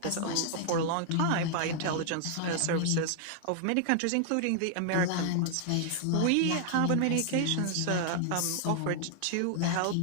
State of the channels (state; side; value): different; both; correlation -0.01